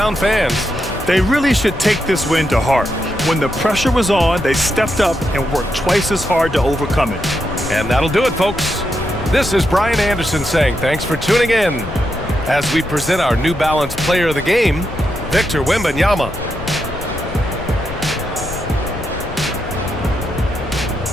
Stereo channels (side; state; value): left; noise; rumble, 11 dB below the sound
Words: fans. They really should take this win to heart. When the pressure was on, they stepped up and worked twice as hard to overcome it. And that'll do it, folks. This is Brian Anderson saying thanks for tuning in as we present our New Balance Player of the Game, Victor Wembanyama.